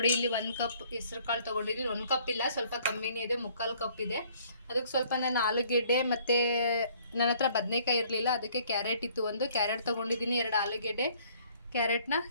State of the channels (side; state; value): both; inverted; correlation -0.59